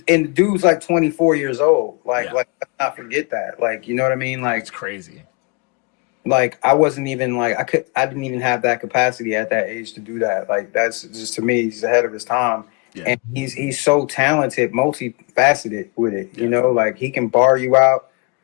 the dude's like 24 years old. Like, Yeah. like let's not forget that. Like, you know what I mean? Like, It's crazy. like I wasn't even like I didn't even have that capacity at that age to do that. Like, that's just, to me, he's ahead of his time. Yeah. And he's so talented, multifaceted with it. Yeah. You know, like he can bar you out,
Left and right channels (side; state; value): right; quieter; 31.9 dB